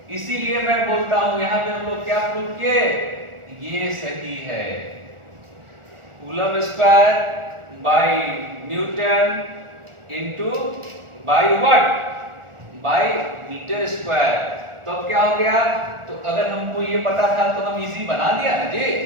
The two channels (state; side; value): late; left; 1.4 ms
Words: इसीलिए मैं बोलता हूं यहाँ पे हम लोग क्या प्रूव किए, ये सही है, coulomb square by newton into by what, by metre square. तो अब क्या हो गया, तो अगर हमको ये पता था तो हम इजी बना दिया ना जी,